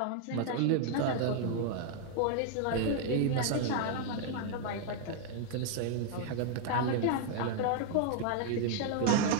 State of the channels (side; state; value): both; different; correlation 0.00